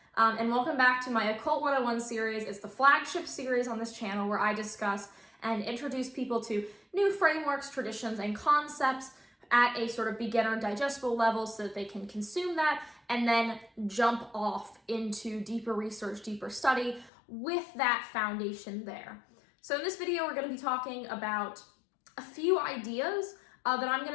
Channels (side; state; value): right; drops out; at 17.1 s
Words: And welcome back to my Occult 101 series. It's the flagship series on this channel where I discuss and introduce people to new frameworks, traditions, and concepts at a sort of beginner digestible level so that they can consume that and then jump off into deeper research, deeper study with that foundation there. So in this video, we're going to be talking about a few ideas that I'm